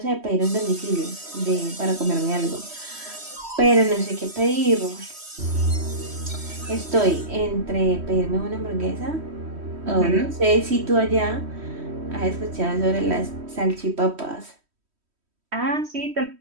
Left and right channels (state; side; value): late; left; 3.1 ms